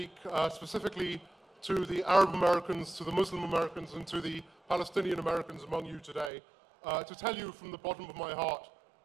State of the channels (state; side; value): drops out; left; at 6.3 s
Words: specifically to the Arab Americans, to the Muslim Americans, and to the Palestinian Americans among you today, to tell you from the bottom of my heart